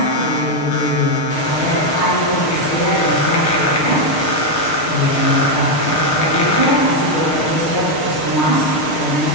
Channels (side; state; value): right; late; 6.6 ms